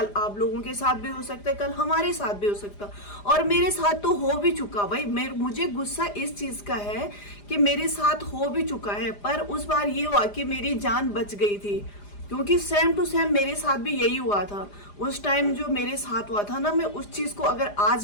आप लोगों के साथ भी हो सकता है, कल हमारे साथ भी हो सकता है, और मेरे साथ तो हो भी चुका। भाई मुझे गुस्सा इस चीज का है कि मेरे साथ हो भी चुका है, पर उस बार ये हुआ कि मेरी जान बच गई थी। क्योंकि सेम टू सेम मेरे साथ भी यही हुआ था। उस टाइम जो मेरे साथ हुआ था ना, मैं उस चीज को अगर आज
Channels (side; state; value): right; late; 4.9 ms